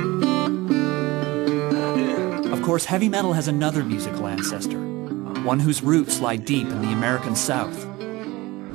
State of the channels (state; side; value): quieter; left; 21.0 dB